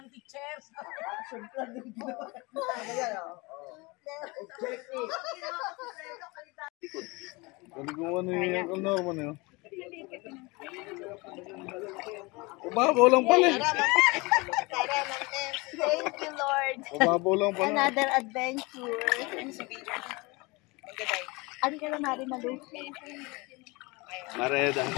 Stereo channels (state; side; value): quieter; right; 25.5 dB